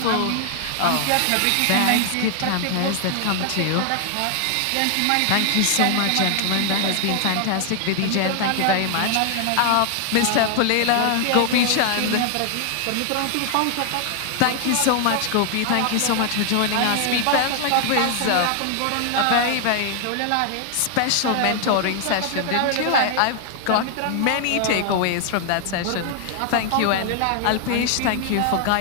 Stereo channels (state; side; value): different; both; correlation 0.00